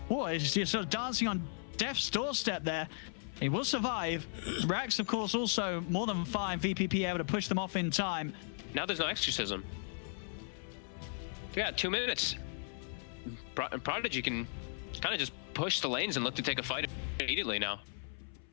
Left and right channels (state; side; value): silent; right; 54 dB below the other